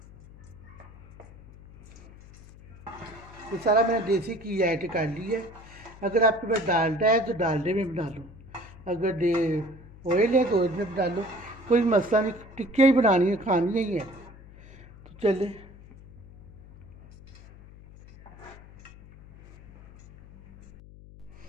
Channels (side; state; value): left; noise; hum, 20 dB below the sound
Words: ये सारा मैंने देसी घी ऐड कर लिया है। अगर आपके पास डालडा है तो डालडे में बना लो, अगर ऑयल है तो ऑयल में बना लो, कोई मसला नहीं। टिक्कियाँ ही बनानी है, खानी ही है। तो चले